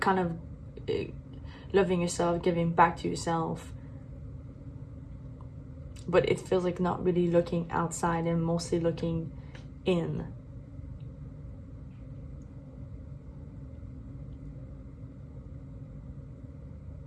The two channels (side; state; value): both; identical; correlation 1.00